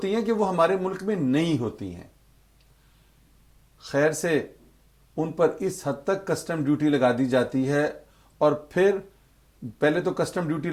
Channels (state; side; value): identical; both; correlation 1.00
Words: हैं कि वो हमारे मुल्क में नहीं होती हैं। खैर से उन पर इस हद तक कस्टम ड्यूटी लगा दी जाती है और फिर पहले तो कस्टम ड्यूटी